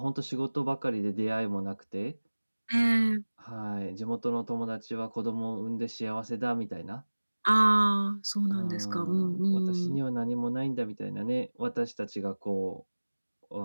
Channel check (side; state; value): both; inverted; correlation -1.00